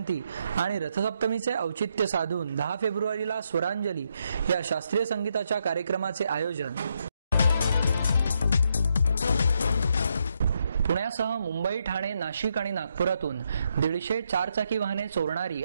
आणि रथसप्तमीचे औचित्य साधून 10 फेब्रुवारीला स्वरांजली या शास्त्रीय संगीताच्या कार्यक्रमाचे आयोजन। पुण्यासह मुंबई, ठाणे, नाशिक आणि नागपुरातून 150 चारचाकी वाहने चोरणारी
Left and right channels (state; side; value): inverted; both; correlation -0.79